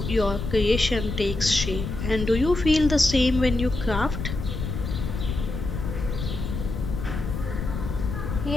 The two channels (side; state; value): left; noise; rumble, 5 dB below the sound